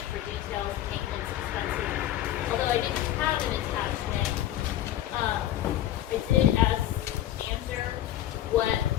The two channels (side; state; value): right; quieter; 12.4 dB